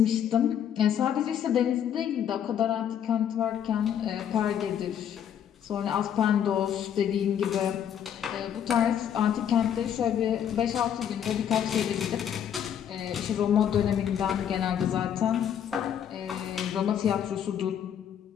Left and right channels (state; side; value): quieter; right; 9.3 dB